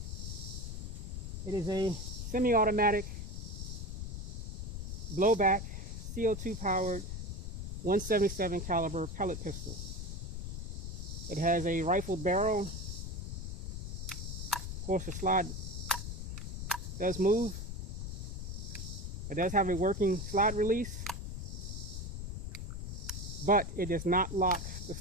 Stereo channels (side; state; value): left; noise; rumble, 5 dB below the sound